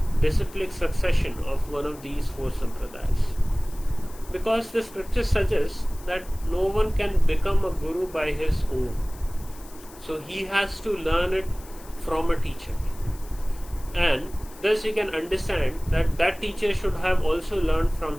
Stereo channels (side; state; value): left; noise; hiss, 21 dB below the sound